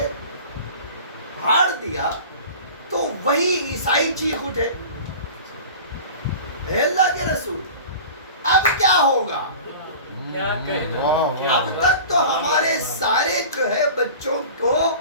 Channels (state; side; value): inverted; both; correlation -0.38